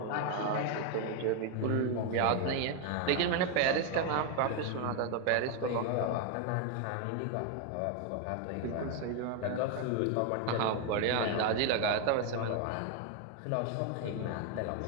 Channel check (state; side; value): different; both; correlation 0.01